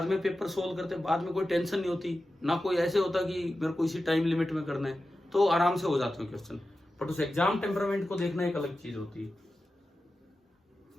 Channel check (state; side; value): normal; both; correlation 0.93